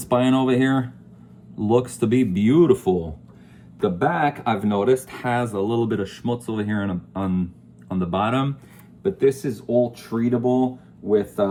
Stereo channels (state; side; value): identical; both; correlation 1.00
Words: over here. Looks to be beautiful. The back, I've noticed, has a little bit of schmutz over here on the bottom, but this is all treatable with